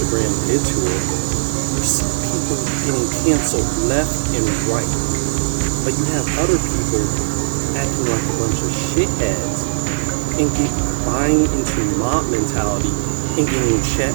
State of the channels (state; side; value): silent; left; digital silence